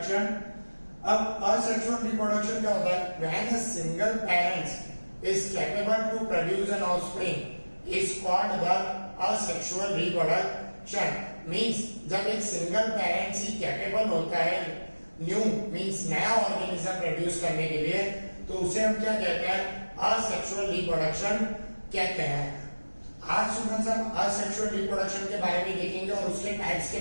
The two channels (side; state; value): both; inverted; correlation -1.00